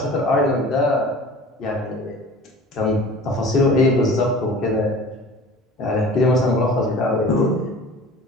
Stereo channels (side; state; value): both; normal; correlation 0.41